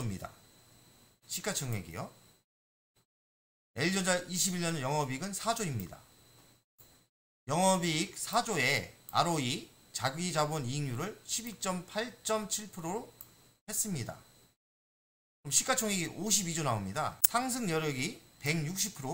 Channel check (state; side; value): identical; both; correlation 1.00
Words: 시가총액이요. LG전자 21년 영업이익은 4조입니다. 영업이익 4조에 ROE 자기자본 이익률을 12.8.7%로 했습니다. 그럼 시가총액이 52조 나옵니다. 상승 여력이